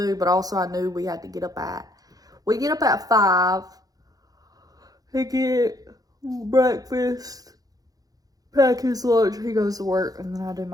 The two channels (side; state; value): left; late; 0.18 ms